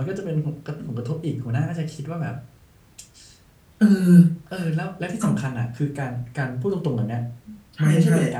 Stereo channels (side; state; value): both; identical; correlation 1.00